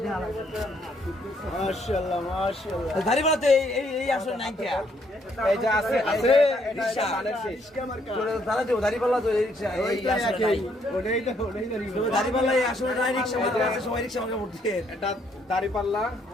মাশাআল্লাহ দাড়িপাল্লা তো এই আসলে নাই কে এই যে আছে আছে এটা রিকশা ধানের শীষ দাদা দেও দাড়িপাল্লা তো এই রিকশা এই আসলে নাই ওটাই দাড়িপাল্লা এই আসলে নাই রিকশা মানে আছে সবাই রিকশা আমাকে উঠতে এটা দাড়িপাল্লা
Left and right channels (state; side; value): normal; both; correlation 0.70